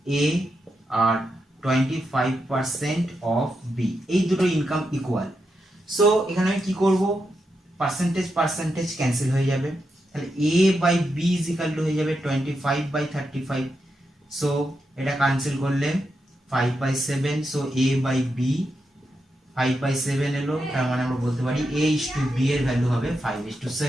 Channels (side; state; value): both; normal; correlation 0.85